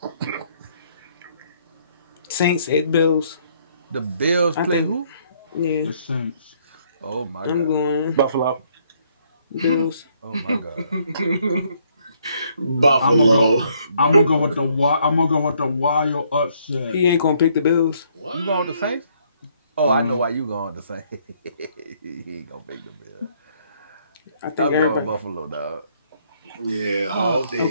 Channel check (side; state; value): both; inverted; correlation -0.68